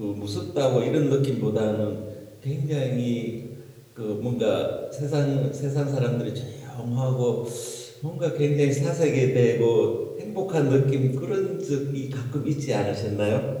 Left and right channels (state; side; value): identical; both; correlation 1.00